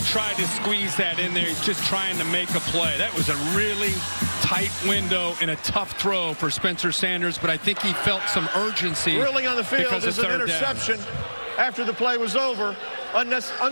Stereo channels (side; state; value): both; inverted; correlation -1.00